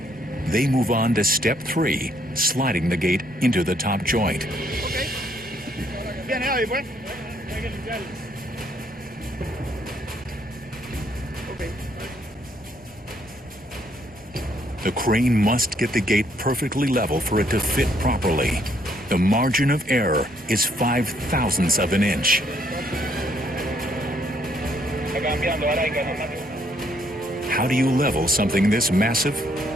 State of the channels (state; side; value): normal; both; correlation 0.69